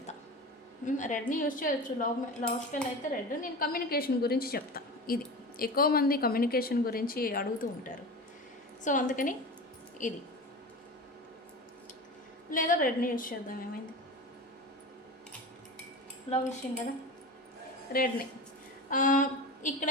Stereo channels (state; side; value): normal; both; correlation 0.30